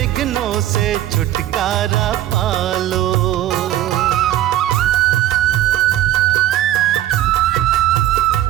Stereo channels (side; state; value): left; quieter; 13.3 dB